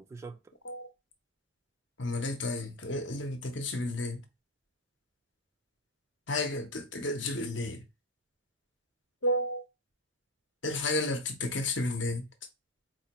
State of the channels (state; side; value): normal; both; correlation 0.17